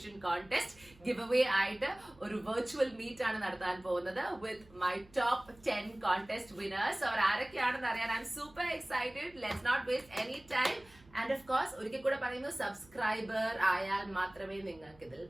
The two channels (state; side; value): noise; right; hum, 26 dB below the sound